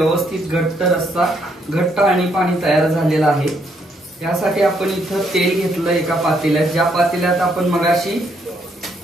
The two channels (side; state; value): both; normal; correlation 0.73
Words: घट्ट रस्सा घट्ट आणि पाणी तयार झालेलं आहे. यासाठी आपण इथं तेल घेतलं एका पातेल्यात. ज्या पातेल्यात आपण मगाशी